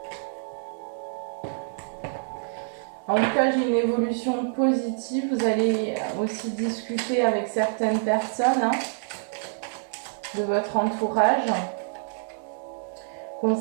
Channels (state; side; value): silent; left; 60 dB below the other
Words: En tout cas, j'ai une évolution positive. Vous allez aussi discuter avec certaines personnes hein, de votre entourage.